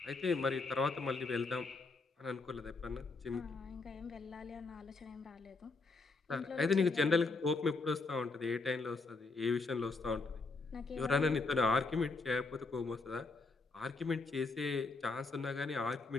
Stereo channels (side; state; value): right; quieter; 3.8 dB